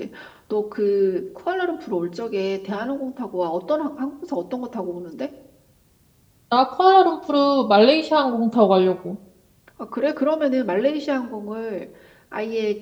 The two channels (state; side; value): identical; both; correlation 1.00